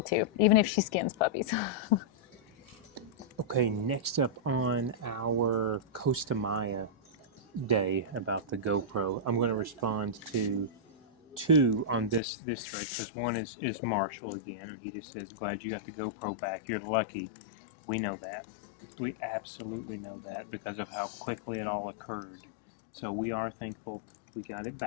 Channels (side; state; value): right; drops out; at 12.2 s